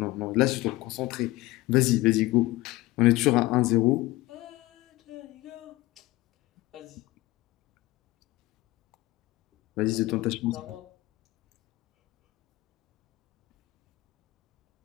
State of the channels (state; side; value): quieter; right; 18.5 dB